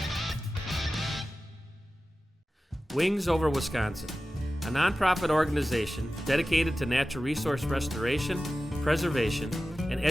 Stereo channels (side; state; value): both; normal; correlation 0.95